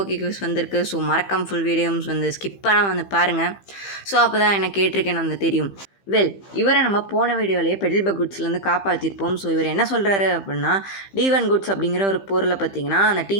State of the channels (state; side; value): late; right; 15 ms